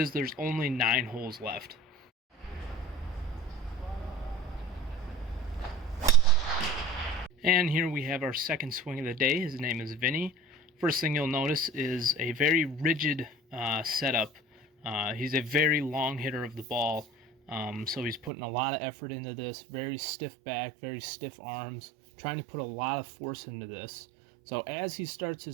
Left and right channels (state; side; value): drops out; left; at 18.3 s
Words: there's only 9 holes left. And here we have our second swing of the day. His name is Vinny. First thing you'll notice is a very rigid setup. He's a very long hitter of the ball, so he's putting a lot of effort into this. Very stiff back, very stiff arms, trying to put a lot of force into this. So as he starts